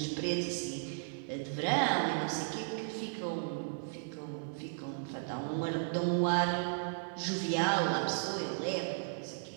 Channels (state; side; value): silent; left; 54 dB below the other